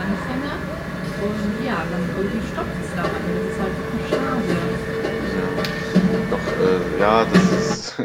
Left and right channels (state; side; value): identical; both; correlation 1.00